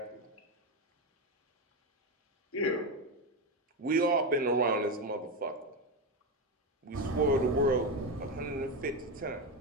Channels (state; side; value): normal; both; correlation 0.13